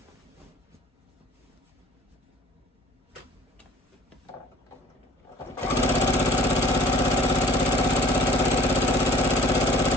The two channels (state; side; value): normal; both; correlation 0.51